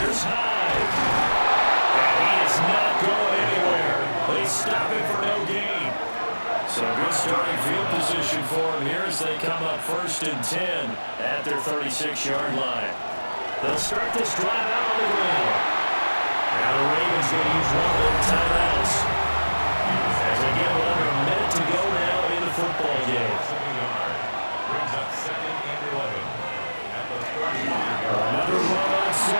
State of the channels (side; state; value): both; inverted; correlation -1.00